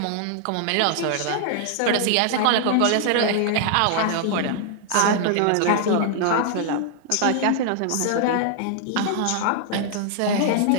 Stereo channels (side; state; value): both; different; correlation 0.00